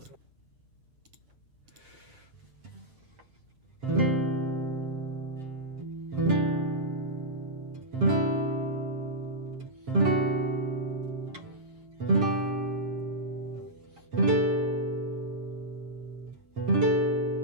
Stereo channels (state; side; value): late; left; 7.6 ms